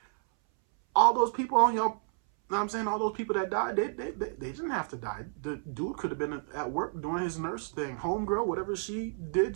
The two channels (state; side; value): silent; left; 57 dB below the other